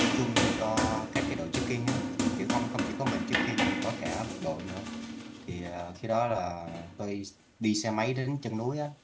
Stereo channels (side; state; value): both; identical; correlation 1.00